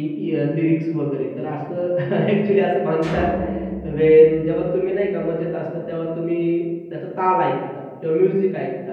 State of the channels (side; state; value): both; identical; correlation 1.00